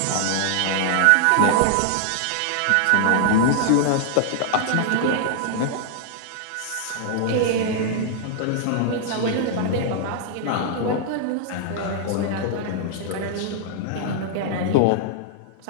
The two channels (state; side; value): different; both; correlation -0.01